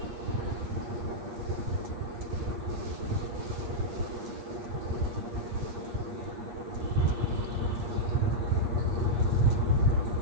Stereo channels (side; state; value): left; late; 8.5 ms